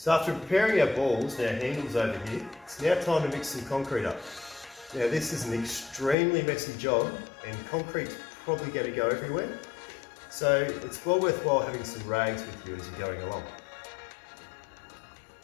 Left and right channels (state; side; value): drops out; right; at 6.2 s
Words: after preparing our balls and our handles over here, it's now time to mix some concrete up. Now this is an extremely messy job and concrete's probably going to go everywhere. So it's well worthwhile having some rags with you as you're going along.